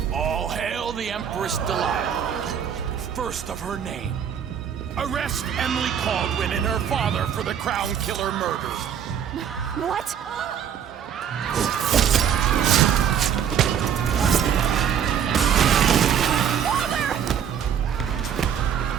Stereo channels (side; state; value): left; quieter; 8.5 dB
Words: All hail the Empress Delilah, first of her name. Arrest Emily Caldwin and her father for the Crown Killer murder. What?